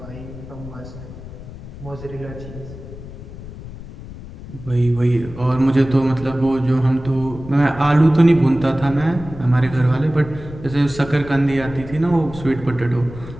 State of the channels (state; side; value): noise; left; rumble, 14 dB below the sound